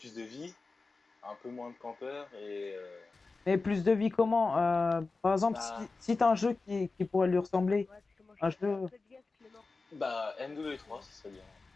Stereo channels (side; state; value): right; quieter; 3.9 dB